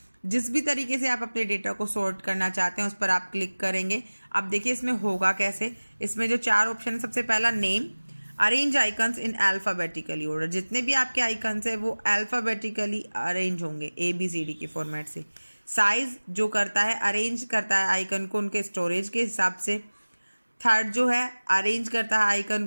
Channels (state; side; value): inverted; both; correlation -1.00